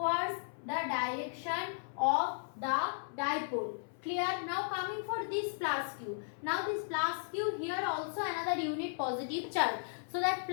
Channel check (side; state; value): right; silent; 54 dB below the other